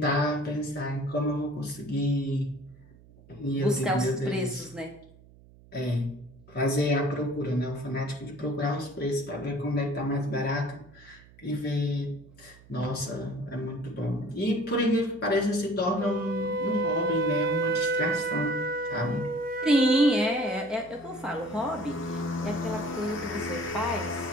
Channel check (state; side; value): noise; right; hum, 24 dB below the sound